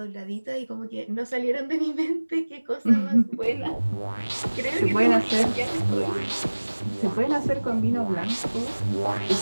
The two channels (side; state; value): both; inverted; correlation -1.00